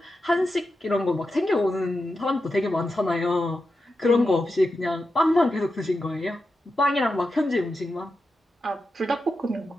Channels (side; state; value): both; normal; correlation 0.89